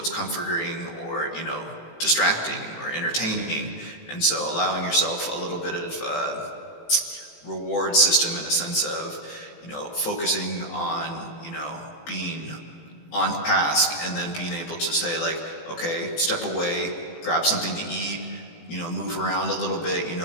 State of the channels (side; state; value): right; late; 18 ms